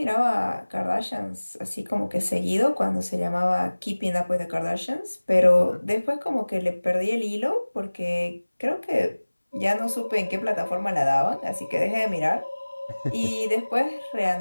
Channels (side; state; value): both; inverted; correlation -1.00